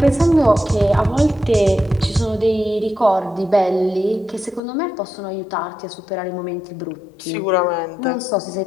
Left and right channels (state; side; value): drops out; right; at 4.6 s